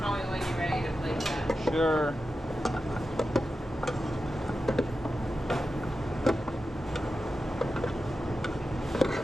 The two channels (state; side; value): normal; both; correlation 0.91